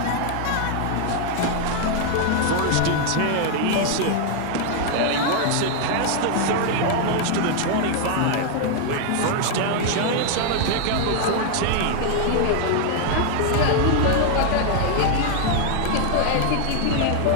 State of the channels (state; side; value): different; both; correlation 0.00